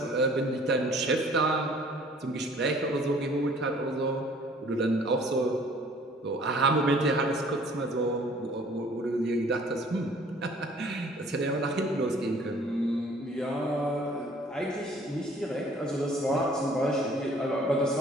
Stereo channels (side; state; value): both; normal; correlation 0.54